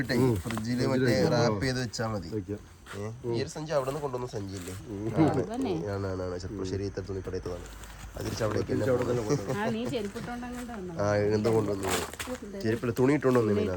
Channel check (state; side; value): identical; both; correlation 1.00